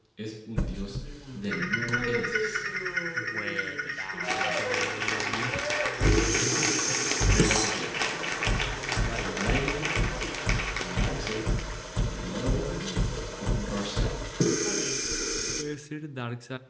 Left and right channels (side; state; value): both; identical; correlation 1.00